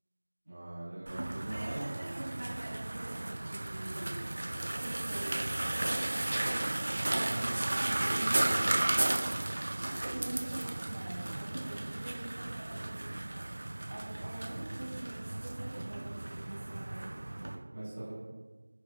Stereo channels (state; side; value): inverted; both; correlation -1.00